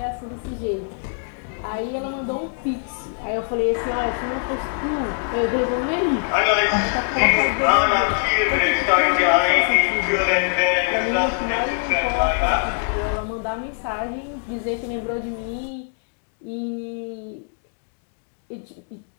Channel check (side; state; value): right; silent; 62 dB below the other